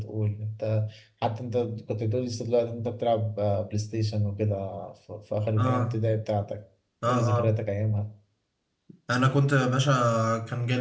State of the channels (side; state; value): both; identical; correlation 1.00